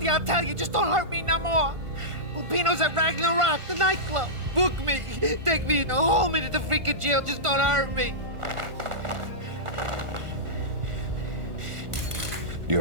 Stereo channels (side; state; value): left; late; 1.5 ms